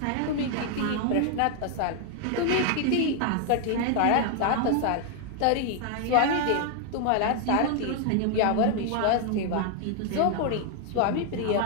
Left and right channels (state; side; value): different; both; correlation 0.00